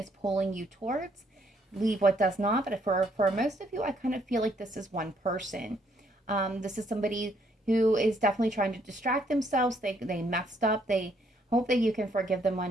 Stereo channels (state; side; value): normal; both; correlation 0.69